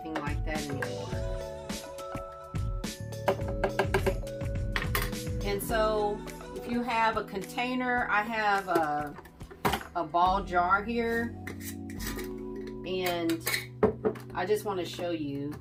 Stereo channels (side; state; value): both; identical; correlation 1.00